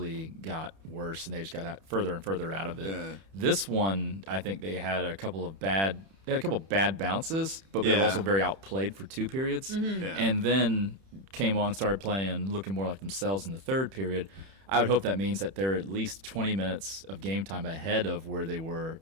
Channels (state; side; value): late; left; 31 ms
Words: got worse, and they just got further and further out of it. Yeah. This one, I think they had a couple of bad bounces, but they were also very outplayed for 2 periods, and then came on and started playing, looking more like themselves in the 3rd period. I would hope that means that they're at least 20 minutes of game time ahead of where they were